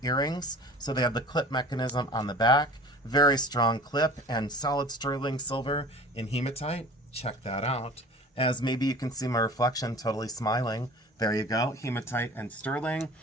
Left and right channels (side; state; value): both; normal; correlation 0.43